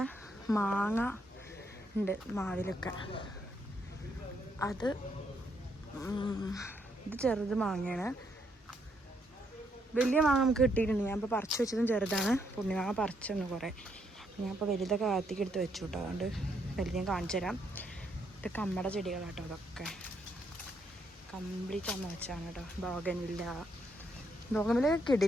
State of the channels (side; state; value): both; normal; correlation 0.75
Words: മാങ്ങ ഉണ്ട് മാവിലൊക്കെ. ഇത് ചെറുത് മാങ്ങയാണ്. വലിയ മാങ്ങ നമുക്ക് കിട്ടിയിട്ടുണ്ട്. ഞാൻ ഇപ്പോൾ പറിച്ച് വെച്ചതും ചെറുതാണ്. പുണ്യമാങ്ങ പറിച്ചൊന്ന് കുറേ. ഞാൻ ഇപ്പോൾ വലുതൊക്കെ കാത്തിക്ക് എടുത്ത് വെച്ചു കേട്ടോ. അതുകൊണ്ട് വലുത് ഞാൻ കാണിച്ചു തരാം. ഇത് കമ്മട ചെടികളാട്ടോ. അതൊക്കെ കംപ്ലീറ്റ് അമ്മ വെച്ചാണ് കേട്ടോ. ബോഗൻവില്ല